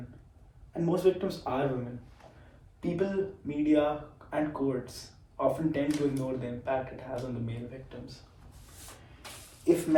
and most victims are women, people, media, and courts often tend to ignore the impact it has on the male victims. If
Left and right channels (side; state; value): both; identical; correlation 1.00